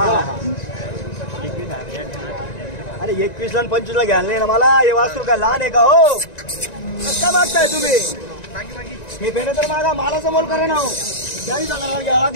अरे 21 ला 25 ला घ्याल नाही ना मला हे वासरू काय लहान आहे का हो का मागताय तुम्ही हे भेट तर मागा मालाचा मोल करा ना हो 40,000 घ्यावं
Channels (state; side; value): late; right; 1.9 ms